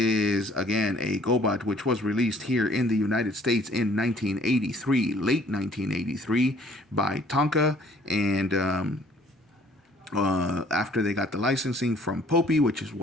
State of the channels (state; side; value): normal; both; correlation 0.58